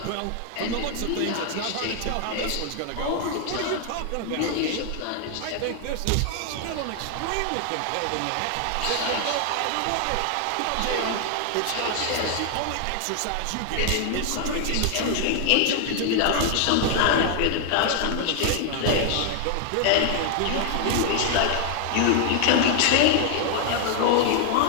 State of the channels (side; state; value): both; different; correlation 0.00